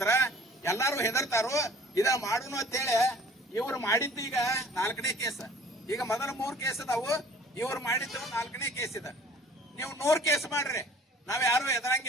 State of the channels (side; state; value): both; normal; correlation 0.51